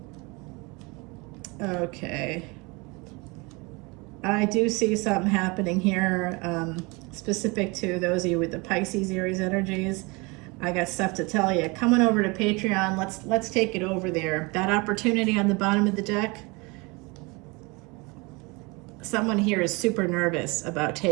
Okay. I do see something happening here, specific to those of you with the Pisces, Aries energies. I got stuff to tell you. Coming over to Patreon, let's take it over there. That opportunity on the bottom of the deck, someone here is super nervous about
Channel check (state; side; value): quieter; left; 27.0 dB